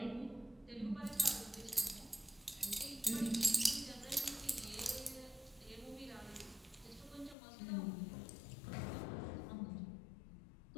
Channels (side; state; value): right; drops out; at 7.4 s